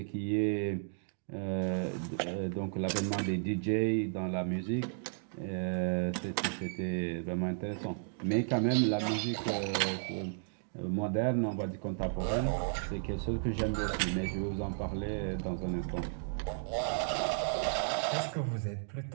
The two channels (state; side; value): silent; left; digital silence